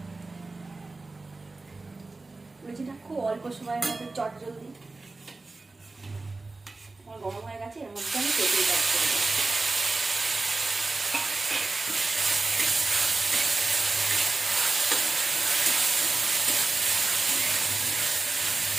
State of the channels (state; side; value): quieter; left; 3.4 dB